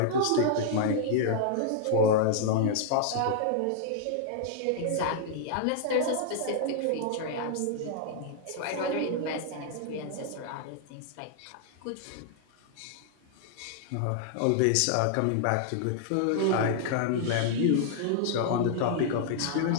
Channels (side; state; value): both; different; correlation -0.01